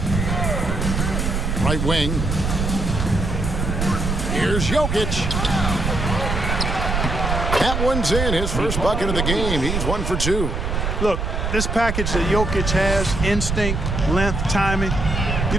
Right wing. Here's Jokic. That one's in, his first bucket of the game. He's 1 for 2. Look, this package that Jokic has, instinct, length, timing, you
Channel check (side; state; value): right; noise; rumble, 1 dB below the sound